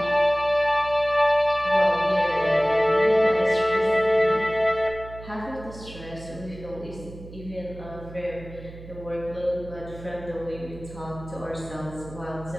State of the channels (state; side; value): noise; right; hum, 15 dB below the sound